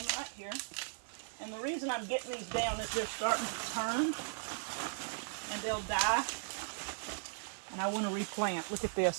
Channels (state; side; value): silent; left; digital silence